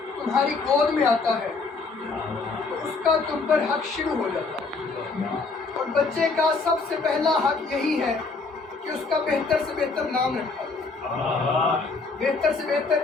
تمہاری گود میں آتا ہے تو اس کا تم پر حق شروع ہو جاتا ہے، اور بچے کا سب سے پہلا حق یہی ہے کہ اس کا بہتر سے بہتر نام رکھا جائے، بہتر سے بہتر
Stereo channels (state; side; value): quieter; right; 4.1 dB